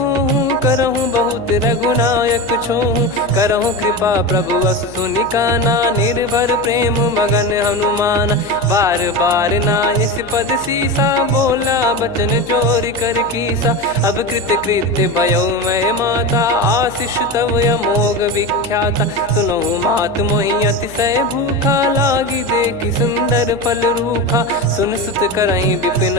करहूँ बहुत रघुनायक छोहूँ। करहूँ कृपा प्रभु अस सुनि काना निर्भर प्रेम मगन हनुमान। बार बार नायस पद सीसा बोला बचन चोरी कर कीसा। अब कृत कृत्य भयो मैं माता आशीष तव अमोघ विख्याता। सुनो मात मोहि अतिशय भूखा लागी देखि सुंदर फल रूखा। सुन सुत करई विपिन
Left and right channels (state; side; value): noise; left; hum, 20 dB below the sound